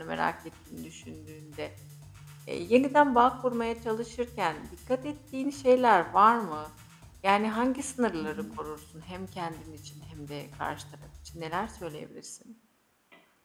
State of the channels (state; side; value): identical; both; correlation 1.00